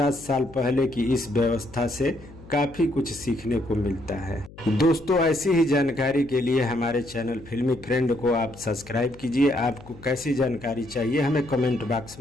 साल पहले की इस व्यवस्था से काफी कुछ सीखने को मिलता है। दोस्तों, ऐसी ही जानकारी के लिए हमारे चैनल फिल्मी फ्रेंड को आप सब्सक्राइब कीजिए। आपको कैसी जानकारी चाहिए हमें कमेंट बॉक्स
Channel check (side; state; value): left; noise; hum, 20 dB below the sound